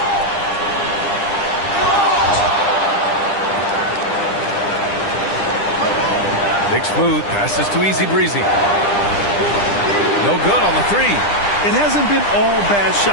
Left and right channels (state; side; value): late; right; 10 ms